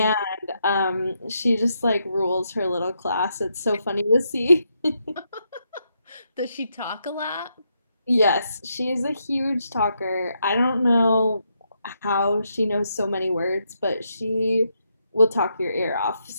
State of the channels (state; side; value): inverted; both; correlation -0.80